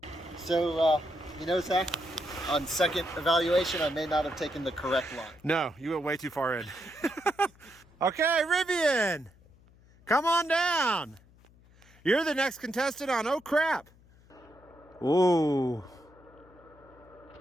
So, you know, Zach, on second evaluation, I may not have taken the correct line. No, you went way too far in. Okay, Rivian, come on down. You're the next contestant on Oh Crap. Ooh.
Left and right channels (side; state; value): left; noise; hum, 27 dB below the sound